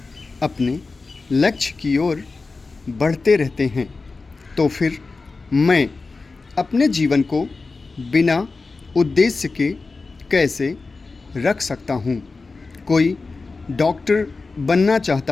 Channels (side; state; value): right; quieter; 3.9 dB